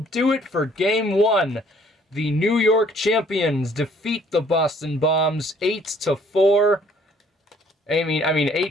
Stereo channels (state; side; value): normal; both; correlation 0.60